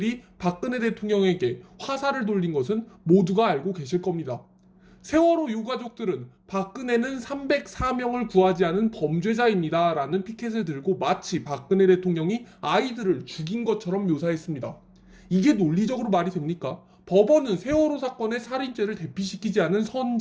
박근혜 대통령에게 화살을 돌린 것은 모두가 알고 계실 겁니다. 세월호 유가족들은 박근혜는 304명을 구하지 않은 범죄자입니다 라는 피켓을 들고 마치 박근혜 대통령이 아이들을 죽인 것처럼 묘사했습니다. 이게 논리적으로 말이 됩니까? 법원은 세월호 사건의 살인죄를 대피시키지 않은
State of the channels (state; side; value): identical; both; correlation 1.00